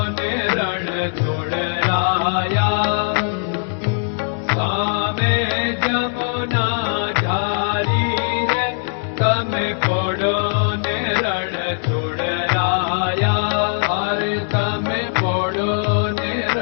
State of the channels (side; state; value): right; silent; 66 dB below the other